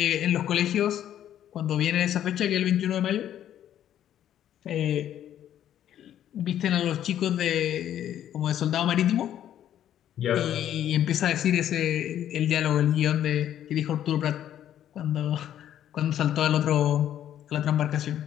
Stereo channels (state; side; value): quieter; right; 11.0 dB